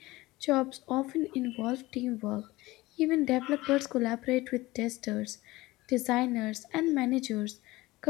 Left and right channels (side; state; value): right; quieter; 19.7 dB